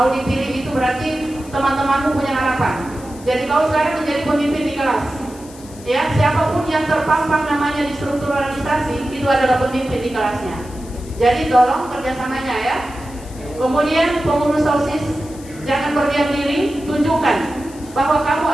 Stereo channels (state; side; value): noise; left; hiss, 21 dB below the sound